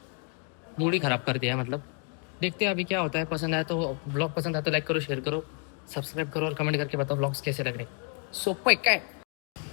ही खराब कर दिया है मतलब देखते हैं अभी क्या होता है पसंद आया तो ब्लॉग पसंद आया तो लाइक करो शेयर करो सब्सक्राइब करो और कमेंट करके बताओ ब्लॉग्स कैसे लग रहे सोपं है काय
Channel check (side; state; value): right; quieter; 38.7 dB